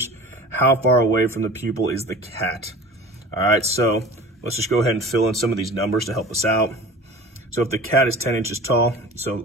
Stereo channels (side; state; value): both; normal; correlation 0.41